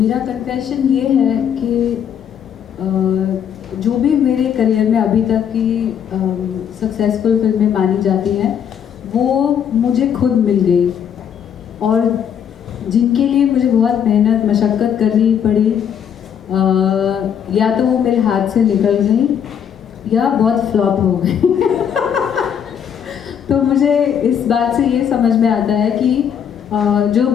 कन्फेशन ये है कि जो भी मेरे करियर में अभी तक की सक्सेसफुल फिल्में मानी जाती हैं वो मुझे खुद मिल गई और जिनके लिए मुझे बहुत मेहनत मशक्क़त करनी पड़ी या तो वो मेरे हाथ से निकल गई या बहुत फ्लॉप हो गई तो मुझे इस बात से ये समझ में आता है कि जो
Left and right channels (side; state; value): right; quieter; 8.4 dB